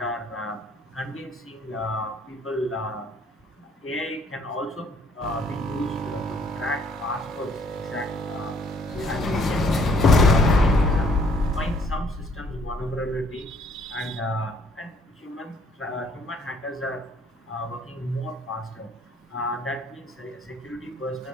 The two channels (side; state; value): both; normal; correlation 0.63